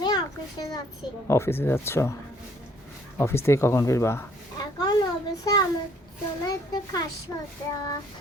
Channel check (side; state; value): both; normal; correlation 0.61